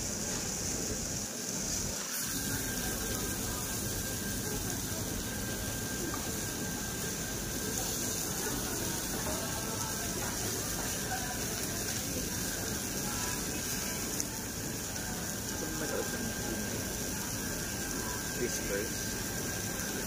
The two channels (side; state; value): both; identical; correlation 1.00